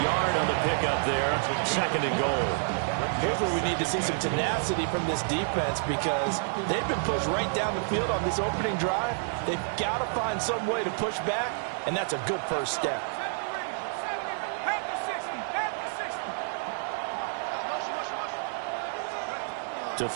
yard on the pickup there. 2nd and goal. Here's where we need to see some tenacity from this defense because they've been pushed right down the field on this opening drive. They've got to find some way to push back, and that's a good first step. To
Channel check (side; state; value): left; silent; digital silence